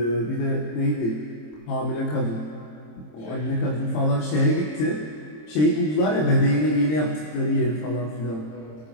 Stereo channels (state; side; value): late; right; 26 ms